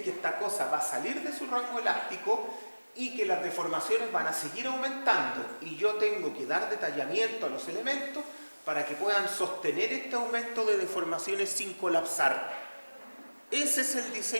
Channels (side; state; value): both; inverted; correlation -1.00